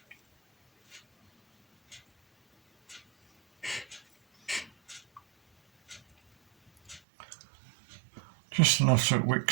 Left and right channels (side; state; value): left; drops out; at 7.0 s